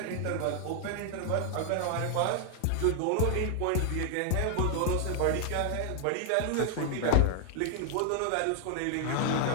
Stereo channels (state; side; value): different; both; correlation 0.00